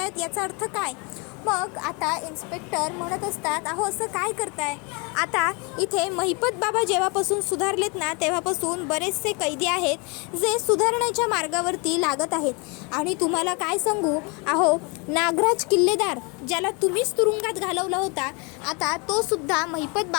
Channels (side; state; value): right; quieter; 31.0 dB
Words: याचा अर्थ काय. मग आता इन्स्पेक्टर म्हणत असतात अहो असं काय करताय. आता इथे महिपत बाबा जेव्हापासून सुधारलेत ना तेव्हापासून बरेचसे कैदी आहेत जे सुधारण्याच्या मार्गावरती लागत आहेत. आणि तुम्हाला काय सांगू, अहो नागराज किल्लेदार ज्याला तुम्हीच तुरुंगात घालवला होता, आता तो सुद्धा महिपत